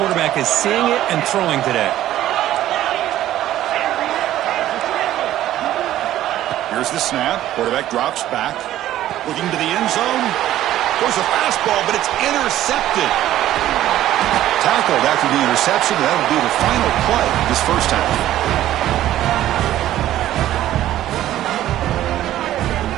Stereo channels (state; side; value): quieter; left; 13.3 dB